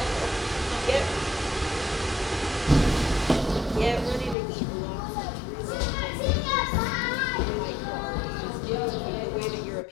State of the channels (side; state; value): right; drops out; at 4.4 s